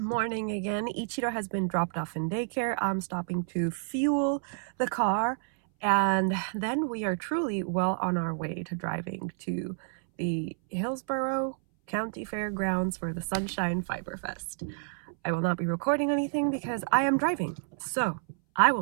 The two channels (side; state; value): left; silent; 58 dB below the other